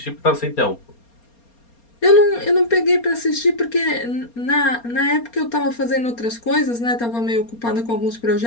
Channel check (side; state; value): right; late; 4.3 ms